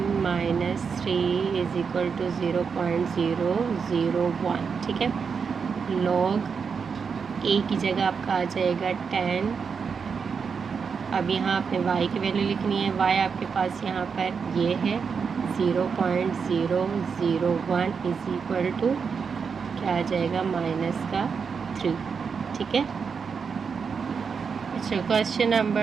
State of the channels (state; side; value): quieter; left; 5.9 dB